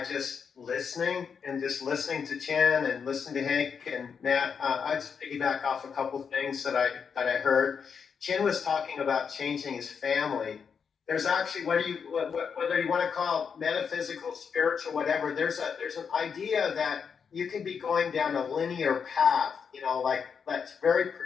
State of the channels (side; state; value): right; quieter; 6.5 dB